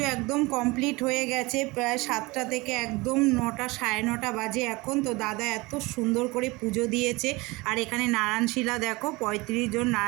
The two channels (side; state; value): left; quieter; 23.3 dB